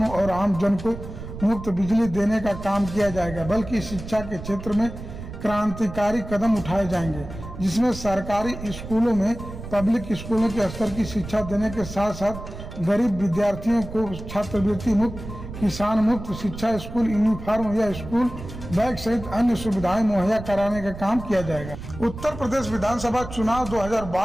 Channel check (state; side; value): noise; right; rumble, 11 dB below the sound